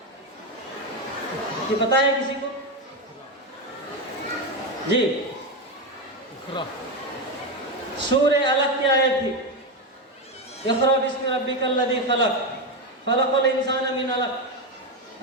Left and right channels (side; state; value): both; normal; correlation 0.12